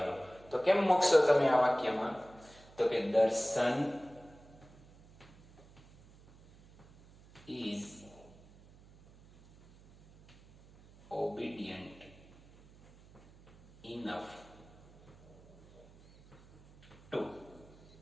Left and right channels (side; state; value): right; noise; hum, 24 dB below the sound